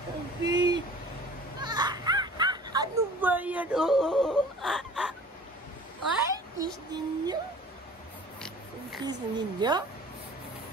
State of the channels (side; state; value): both; normal; correlation 0.46